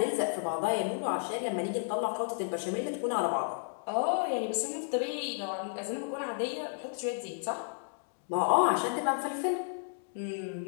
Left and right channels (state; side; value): silent; right; digital silence